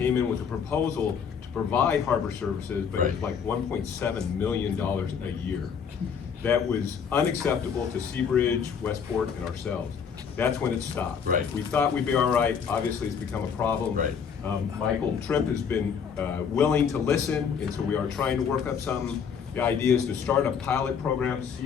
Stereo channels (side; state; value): right; quieter; 6.9 dB